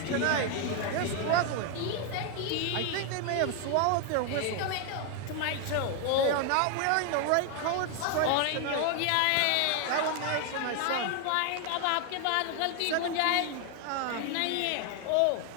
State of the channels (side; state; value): both; different; correlation 0.00